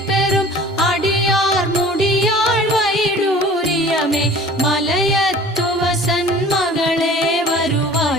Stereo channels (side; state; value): both; normal; correlation 0.45